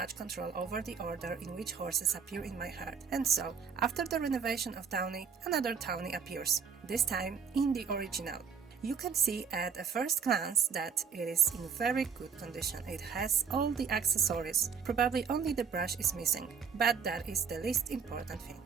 control over the order in which horses appear in my herd, and so, after the renovation of Tawny, another Tawny appears, this time in the original. You can see at a first glance that it is in very good condition. It has all the accessories, probably only the brush is missing, but that is the least important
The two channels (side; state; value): left; quieter; 6.5 dB